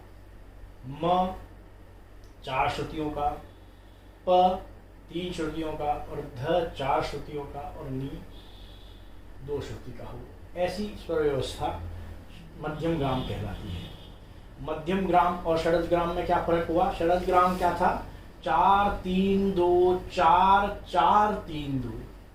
म 4 श्रुतियों का, प 3 श्रुतियों का और ध 4 श्रुतियों का और नी 2 श्रुति का हो, ऐसी स्वर व्यवस्था मध्यम ग्राम कहलाती है। मध्यम ग्राम और शरद ग्राम में क्या फर्क हुआ, शरद ग्राम क्या था, 4 3 2 4 4 3 2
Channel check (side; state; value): both; identical; correlation 1.00